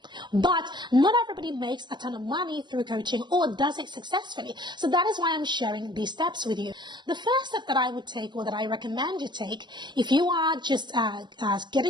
but not everybody makes a ton of money through coaching or does it successfully. So that is why I'm sharing these steps with you. The first step that I would take, or that I recommend you take if you are just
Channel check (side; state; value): left; late; 0.22 ms